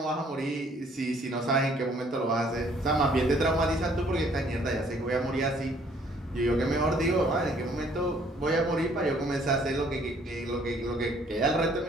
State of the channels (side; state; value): both; normal; correlation 0.61